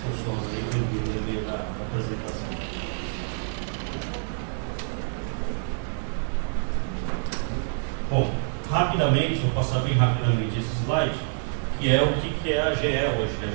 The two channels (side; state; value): left; silent; digital silence